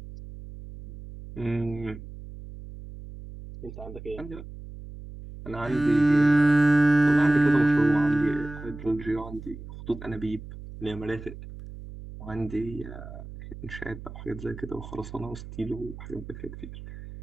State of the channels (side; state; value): right; noise; hum, 13 dB below the sound